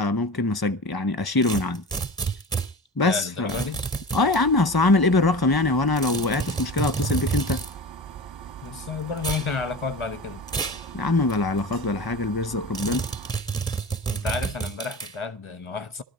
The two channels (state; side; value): normal; both; correlation 0.32